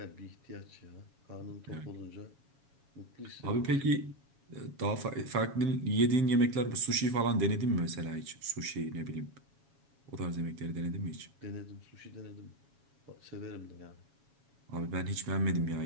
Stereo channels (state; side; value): late; left; 7.2 ms